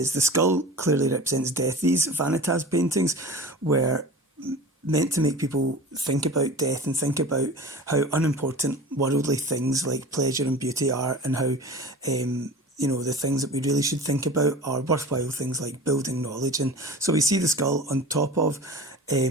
the skull clearly represents death. These vanitas paintings were meant to make people think about death and think about how unimportant worldly things like pleasure and beauty are, and how the things that we really should think about are worthwhile things like building knowledge. And so we see the skull on top of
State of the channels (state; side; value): normal; both; correlation 0.37